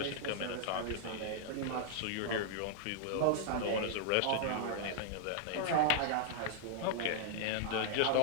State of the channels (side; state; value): both; different; correlation -0.01